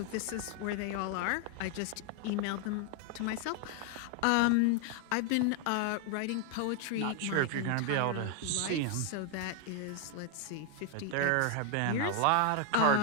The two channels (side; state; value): both; different; correlation 0.00